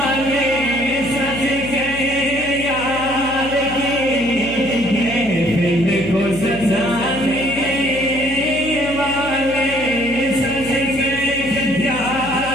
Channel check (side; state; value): left; noise; hum, 13 dB below the sound